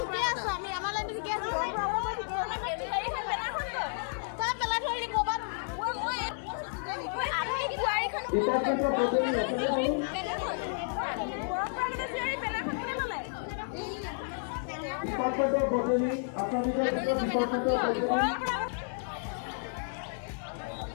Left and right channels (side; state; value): right; silent; digital silence